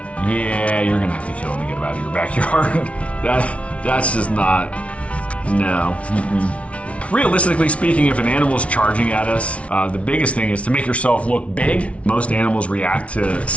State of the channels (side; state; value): right; late; 0.063 ms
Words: Yeah, you're gonna have to kill it to get it out of your backyard. That's just not, no. Realistically speaking, if an animal's charging at us, the biggest thing is to make yourself look big. Most animals react to